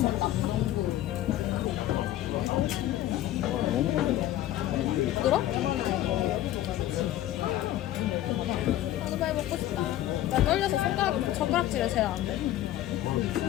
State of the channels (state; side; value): quieter; right; 13.7 dB